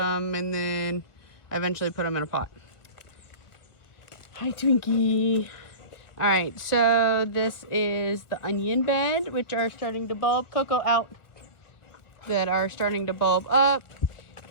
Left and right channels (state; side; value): late; right; 1.4 ms